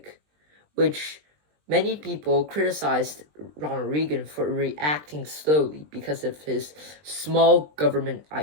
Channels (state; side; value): late; left; 20 ms